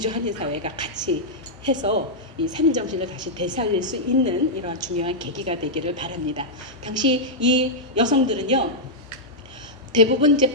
한인사회가 같이 해서 이 3인 정신을 다시 되살릴 수 있는 이러한 중요한 계기가 되기를 바랍니다. 당시 이 여성들은요, 대부분 이제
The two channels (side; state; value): both; normal; correlation -0.07